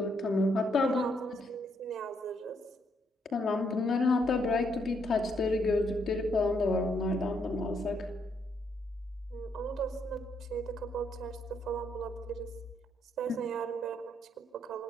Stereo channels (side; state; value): both; normal; correlation 0.74